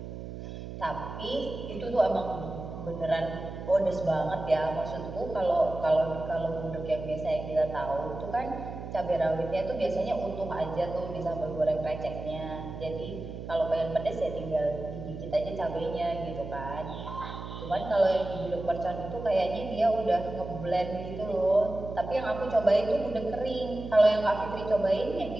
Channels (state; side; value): noise; right; hum, 9 dB below the sound